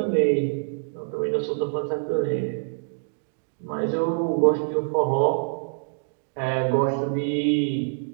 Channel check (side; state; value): left; silent; digital silence